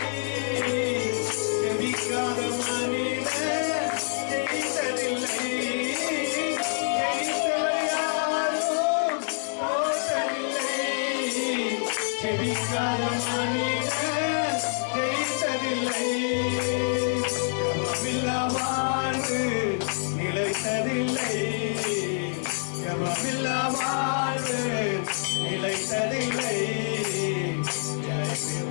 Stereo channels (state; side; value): silent; right; digital silence